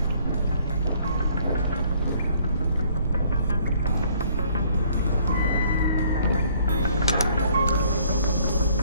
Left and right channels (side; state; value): both; inverted; correlation -0.61